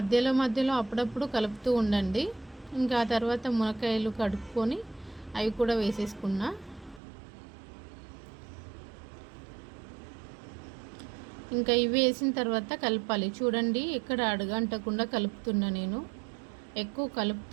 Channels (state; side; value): drops out; left; at 7.0 s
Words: అప్పుడప్పుడు కలుపుతూ ఉండండి. ఇంకా ఆ తర్వాత మునక్కాయలు కడుక్కొని అవి కూడా వేసేసుకున్నా. ఇంకా ఇవి వేసిన తర్వాత కలపాలి. చూడండి, ఎక్కడ అడుగంటకుండా కలుపుతున్నా నేను. ఎక్కువ